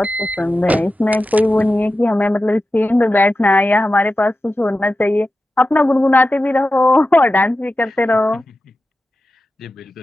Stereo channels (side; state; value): both; normal; correlation 0.93